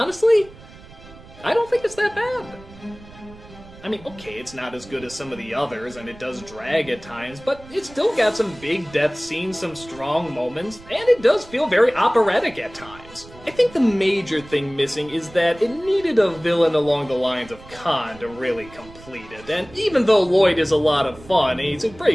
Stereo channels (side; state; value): right; noise; rumble, 20 dB below the sound